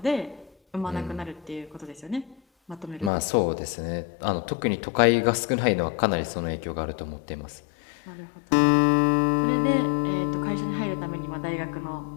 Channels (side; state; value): right; drops out; at 3.1 s